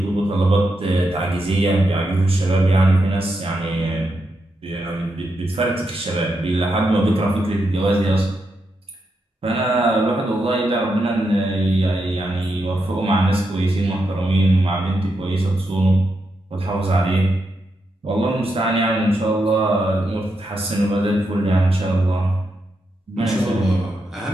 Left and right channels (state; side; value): normal; both; correlation 0.84